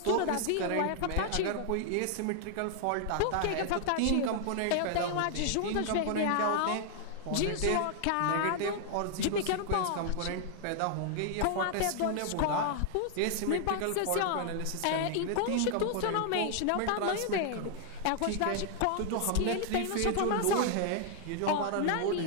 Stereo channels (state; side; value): different; both; correlation 0.00